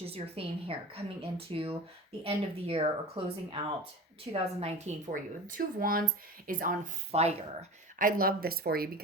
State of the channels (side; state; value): both; normal; correlation 0.32